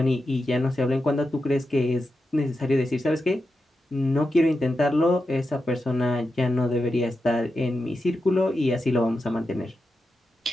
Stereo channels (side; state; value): both; normal; correlation 0.89